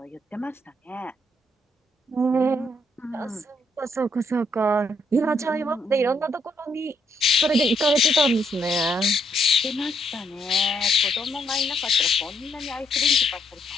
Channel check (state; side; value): normal; both; correlation 0.74